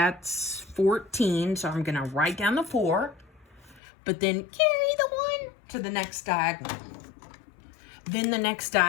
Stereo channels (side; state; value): right; drops out; at 3.8 s